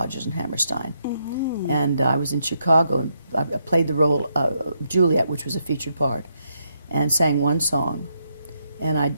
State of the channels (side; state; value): both; inverted; correlation -0.78